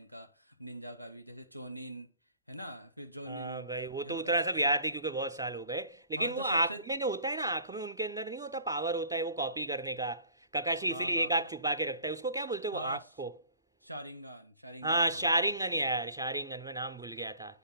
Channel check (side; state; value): both; inverted; correlation -0.50